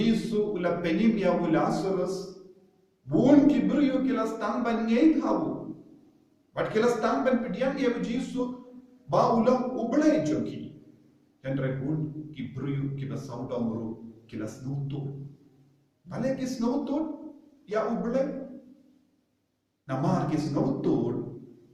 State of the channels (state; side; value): identical; both; correlation 1.00